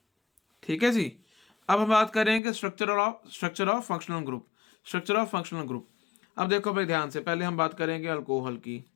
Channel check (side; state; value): right; drops out; at 2.4 s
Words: ठीक है जी। अब हम बात करेंगे structure of functional group. Structure of functional group, अब देखो भाई ध्यान से, पहले हम बात करेंगे अल्कोहल की।